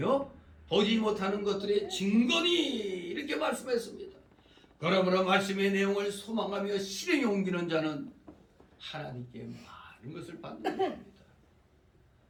보지 못하는 것들의 증거니 이렇게 말씀했습니다. 그러므로 말씀의 내용을 소망하며 실행에 옮기는 자는 하나님께 많은 것을 받는 것입니다.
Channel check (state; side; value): identical; both; correlation 1.00